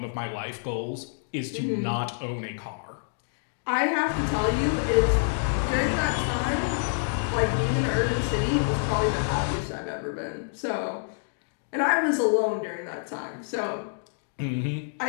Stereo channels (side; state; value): right; silent; digital silence